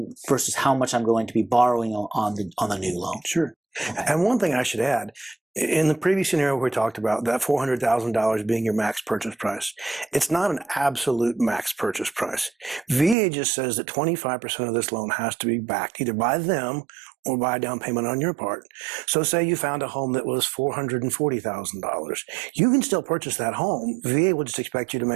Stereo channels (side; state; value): left; drops out; at 13.2 s